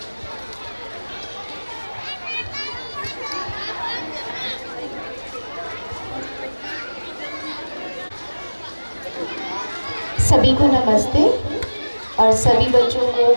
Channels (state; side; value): inverted; both; correlation -1.00